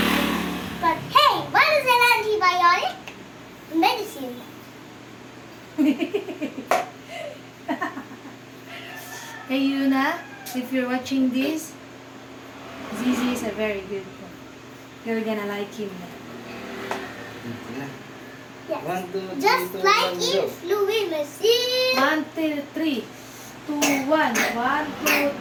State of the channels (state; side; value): identical; both; correlation 1.00